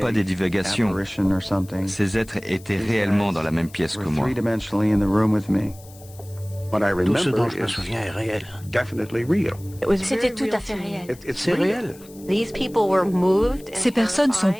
des divagations. Ces êtres étaient réellement dans la même pièce que moi. Tout ce dont je me souviens est réel. C'était tout à fait réel. C'est réel. Ces personnes sont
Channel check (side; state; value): left; noise; hiss, 23 dB below the sound